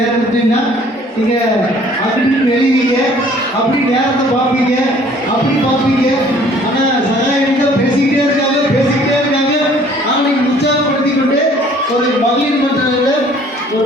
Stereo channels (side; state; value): both; normal; correlation 0.56